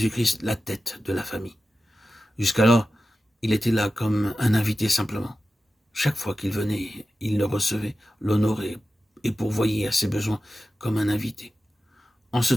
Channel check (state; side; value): normal; both; correlation 0.93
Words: la tête de la famille. Jusqu'alors, il était là comme un invité simplement. Chaque fois qu'il venait, il le recevait, l'honorait et pourvoyait à ses besoins comme un invité. En ce